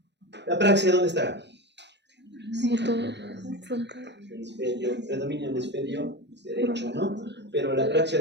La praxia, ¿dónde estará? Frontal. Predomina el hemisferio derecho, ¿no? Pero la praxia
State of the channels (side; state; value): left; late; 0.51 ms